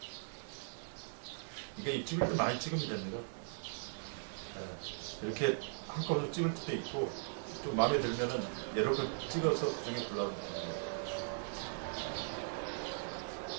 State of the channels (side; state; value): left; silent; digital silence